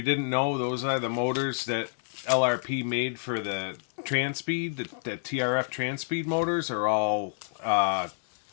didn't know, those are the motors that LRP made for the Transpeed. The TRF Transpeed motors are all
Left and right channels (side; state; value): right; silent; 59 dB below the other